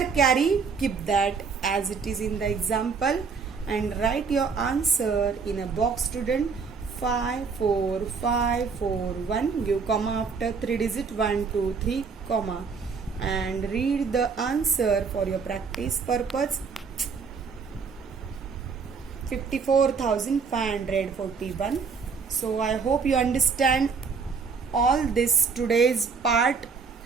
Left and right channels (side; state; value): left; quieter; 5.3 dB